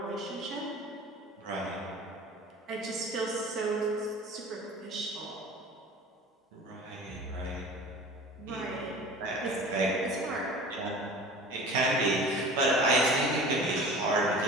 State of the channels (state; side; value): normal; both; correlation 0.40